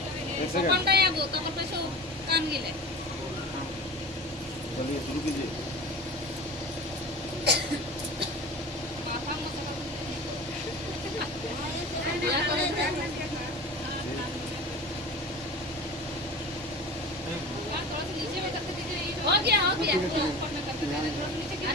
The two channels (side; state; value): both; normal; correlation 0.34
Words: कौन का याबो कमर पे सो कान गिले चलिए शुरू कीजिए। पापा मसाला हो गया